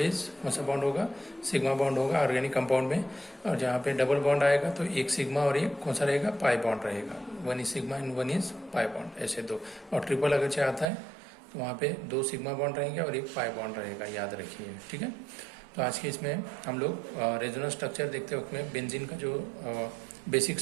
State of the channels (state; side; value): drops out; left; at 10.9 s